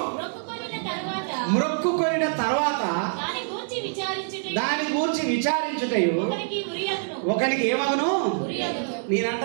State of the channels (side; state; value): left; silent; digital silence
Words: మ్రొక్కుకొనిన తర్వాత దాని గూర్చి విచారించుటయు ఒకనికి ఏమగును?